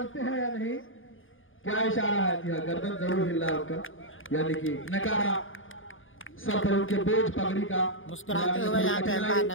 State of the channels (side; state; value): right; late; 0.58 ms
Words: हैं या नहीं। क्या इशारा है? जी हाँ, गर्दन जरूर हिल रहा उनका, यानी कि नकारा सर पर उनके बोझ पगड़ी का। मुस्कुराते हुए यहाँ पे